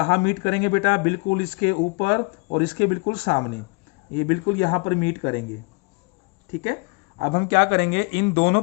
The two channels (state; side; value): quieter; right; 29.5 dB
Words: मीट करेंगे बेटा, बिल्कुल इसके ऊपर और इसके बिल्कुल सामने, ये बिल्कुल यहाँ पर मीट करेंगे, ठीक है। अब हम क्या करेंगे, इन दोनों